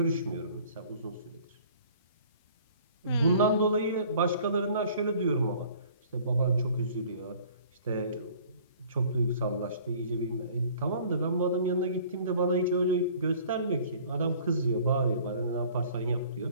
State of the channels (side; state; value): both; inverted; correlation -0.52